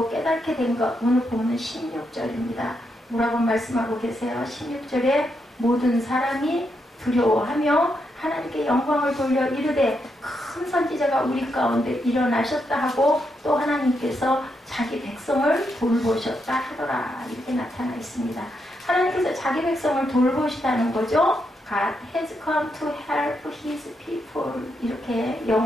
깨닫게 된 것 오늘 보면 16절입니다. 뭐라고 말씀하고 계세요? 16절에 모든 사람이 두려워하며 하나님께 영광을 돌려 이르되 큰 선지자가 우리 가운데 일어나셨다 하고 또 하나님께서 자기 백성을 돌보셨다 하더라 이렇게 나타나 있습니다. 하나님께서 자기 백성을 돌보시다는 거죠. God has come to help his people 이렇게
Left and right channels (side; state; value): both; normal; correlation 0.81